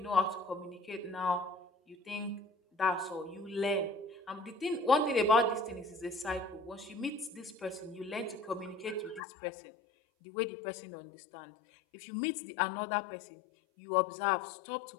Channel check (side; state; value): right; drops out; at 9.2 s